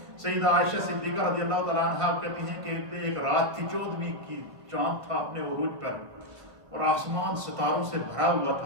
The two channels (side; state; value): left; late; 1.5 ms